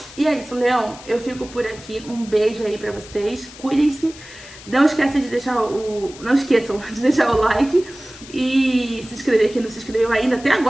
E é isso, Leão. Eu fico por aqui. Um beijo aí pra vocês. Cuidem-se. Não esqueçam de deixar o like e se inscrever quem não se inscreveu ainda. Até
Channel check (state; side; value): noise; left; hiss, 18 dB below the sound